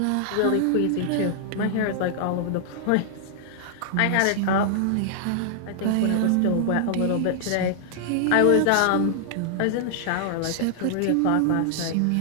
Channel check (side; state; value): both; different; correlation -0.01